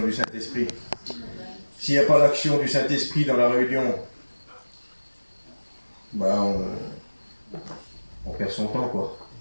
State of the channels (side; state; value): both; inverted; correlation -1.00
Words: du Saint-Esprit. S'il n'y a pas l'action du Saint-Esprit dans la réunion, on perd son temps, quoi.